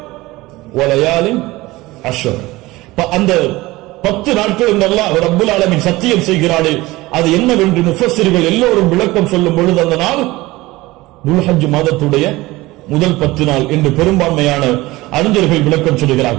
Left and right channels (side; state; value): left; quieter; 19.7 dB